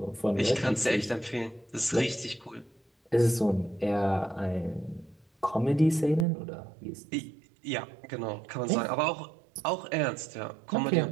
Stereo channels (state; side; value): drops out; left; at 6.2 s